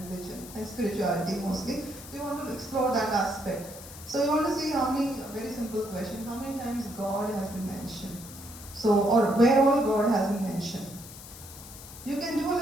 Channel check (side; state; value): left; noise; hiss, 15 dB below the sound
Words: religion and spirituality mostly. We want to explore that aspect. So you want to see how many, a very simple question, how many times God has been mentioned. So, or where all God has been mentioned. You can do a